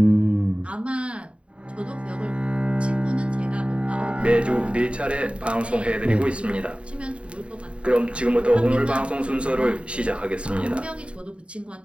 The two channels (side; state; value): left; late; 0.059 ms